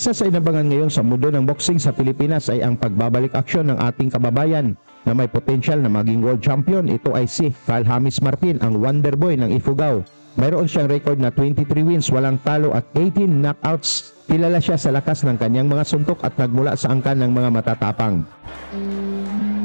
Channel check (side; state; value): both; inverted; correlation -1.00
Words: sa inabangan ngayon sa mundo ng boxing sa Pilipinas ay ang pagbabalik aksyon ng ating kababayan na may potensyal na maging world champion. Ito ay si Carl James Martin, ang Wonder Boy ng Ifugao. Mayroon siyang record na 23 wins, walang talo at 18 knockouts. Kilala siya sa lakas ng kanyang mga suntok at nagmula sa angkan ng mga matatapang.